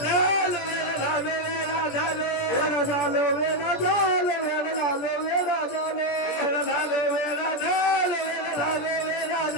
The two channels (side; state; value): right; late; 17 ms